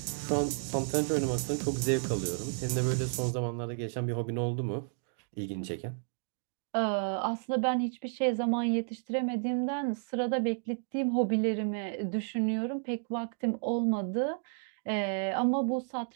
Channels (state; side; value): silent; left; 56 dB below the other